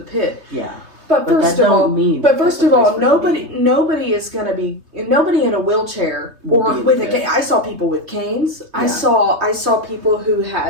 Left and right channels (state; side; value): late; left; 3.3 ms